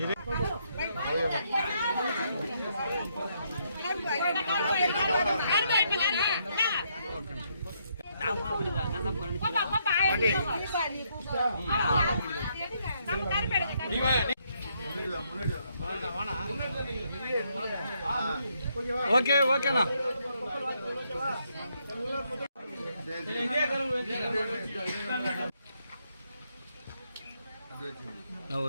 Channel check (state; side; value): inverted; both; correlation -0.75